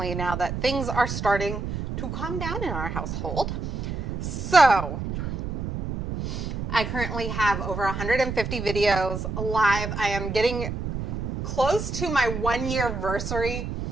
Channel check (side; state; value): right; noise; rumble, 4 dB below the sound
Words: now that things are starting to calm down in our household. So, I currently have over 150 videos live. I am getting close to my 1-year anniversary